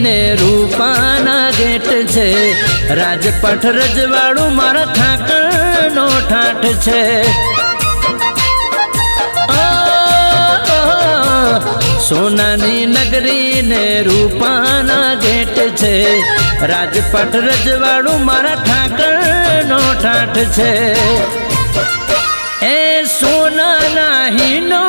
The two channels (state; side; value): inverted; both; correlation -1.00